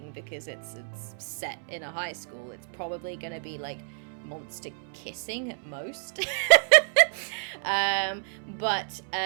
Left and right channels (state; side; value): silent; left; 59 dB below the other